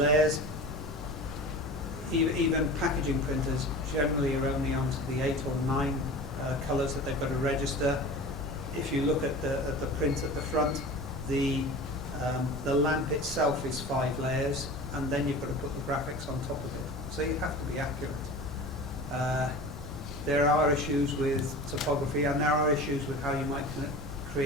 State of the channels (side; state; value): both; normal; correlation 0.36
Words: Even packaging printers generally are only onto the 8 or 9 colours that they've got to register. If you look at the print at the front, the lamp itself is 5 layers, and then you've got to put the graphics on top of it. So you have to be accurate. There are issues with topography, and there are issues with how you might